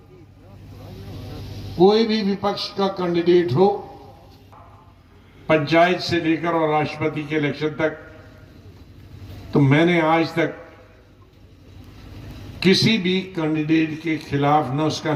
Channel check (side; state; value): both; identical; correlation 1.00